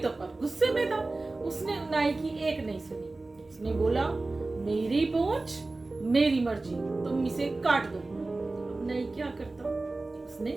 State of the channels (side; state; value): left; quieter; 3.2 dB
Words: पर गुस्से में था, उसने नाई की एक नहीं सुनी। उसने बोला, मेरी पूंछ मेरी मर्जी, तुम इसे काट दो। अब नाई क्या करता,